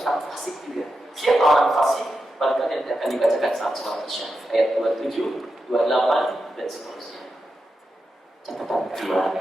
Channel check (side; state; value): both; normal; correlation 0.88